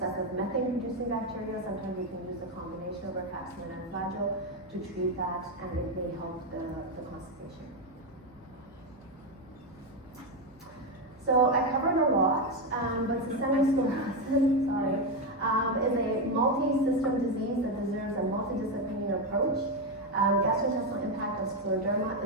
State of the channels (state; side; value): normal; both; correlation 0.08